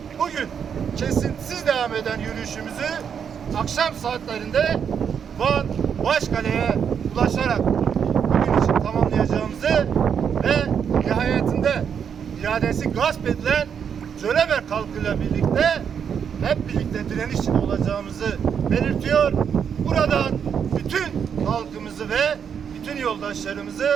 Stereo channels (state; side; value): quieter; left; 7.5 dB